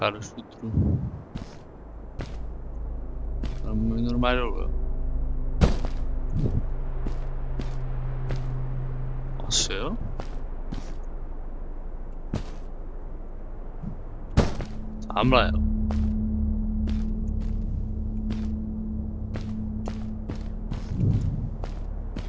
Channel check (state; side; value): identical; both; correlation 1.00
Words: do šutru. Tam můj normálně dolů, jo. Asi jo? Tamhle, jo.